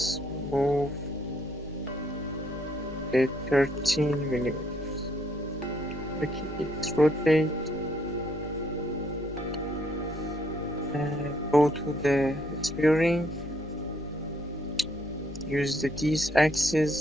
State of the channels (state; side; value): noise; left; rumble, 23 dB below the sound